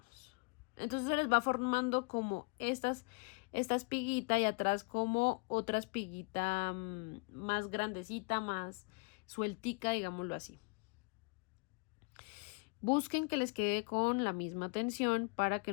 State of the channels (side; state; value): right; quieter; 33.4 dB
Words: Entonces se les va formando como esta espiguita y atrás como otra espiguita más grandecita, más sueltica, digámoslo así. Busquen que les quede con la misma tensión para que